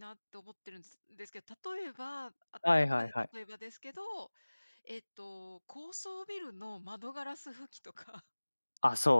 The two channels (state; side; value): inverted; both; correlation -1.00